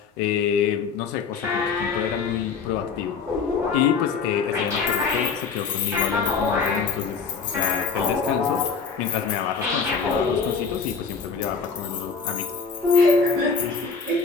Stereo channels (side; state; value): right; quieter; 5.4 dB